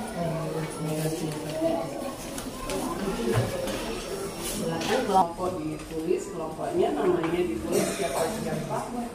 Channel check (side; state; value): both; identical; correlation 1.00